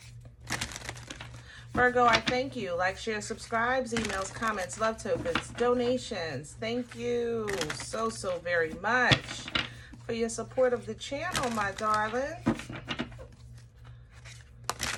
Virgo, I thank you. Like, share, subscribes, emails, comments, love tokens, donations. Thank you so very much for your support of the channel, my darling.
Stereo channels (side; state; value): both; identical; correlation 1.00